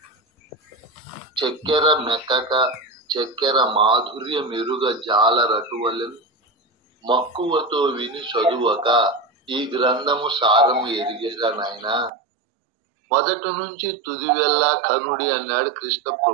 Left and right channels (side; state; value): left; drops out; at 12.1 s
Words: చక్కెర మెక్కక చక్కెర మాధుర్య మెరుగ జాలరటువలెను మక్కువతో విని చదువక ఈ గ్రంథము సారము ఎరిగేగా నాయనా. మొదటి నుంచి తుది వెళ్ళా కనుడి అన్నాడు కృష్ణ